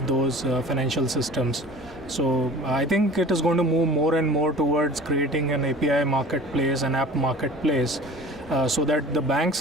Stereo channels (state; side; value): normal; both; correlation 0.42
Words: those financial systems. So I think it is going to move more and more towards creating an API marketplace, an app marketplace, so that the banks